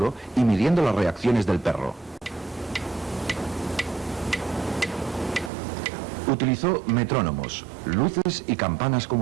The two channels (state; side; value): drops out; left; at 5.5 s